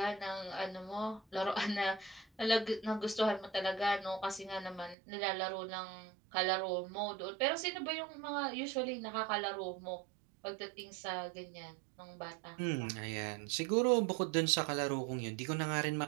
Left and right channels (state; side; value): drops out; left; at 5.0 s